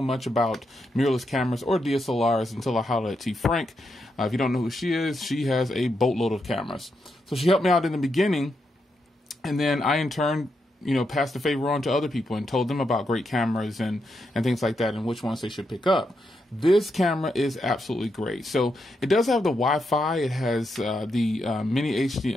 much about mirrorless cameras or DSLRs until I hollered at T. Frank. If you don't know who she is, she has a boatload of cameras. So she helped me out in the beginning, and then I in turn, you know, passed the favor on to other people and told them about great cameras and things like that and which ones they should pick up. This camera is absolutely great. So it does have the Wi-Fi. It has the mini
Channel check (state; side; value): normal; both; correlation 0.83